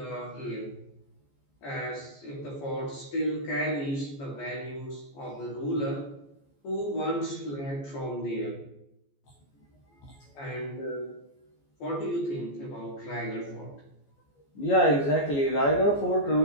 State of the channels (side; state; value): right; late; 14 ms